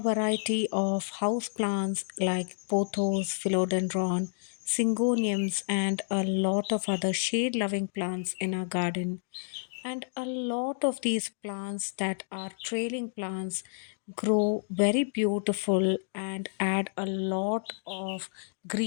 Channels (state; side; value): silent; right; digital silence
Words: of house plants like pothos, philodendron, syngoniums, and a lot of other shade loving plants in our garden. And a lot of these plants that are trailing plants grow very beautiful and add a lot of